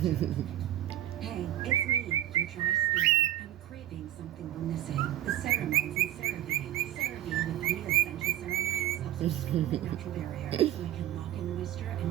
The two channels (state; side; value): quieter; left; 12.9 dB